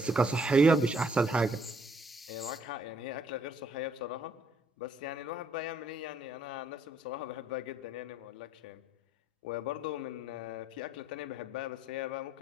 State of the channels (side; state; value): both; normal; correlation 0.67